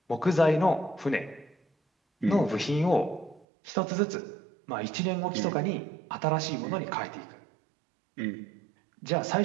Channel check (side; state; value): left; drops out; at 3.5 s